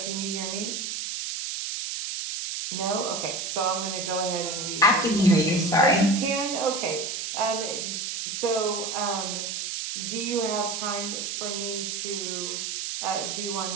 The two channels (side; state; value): right; noise; hiss, 3 dB below the sound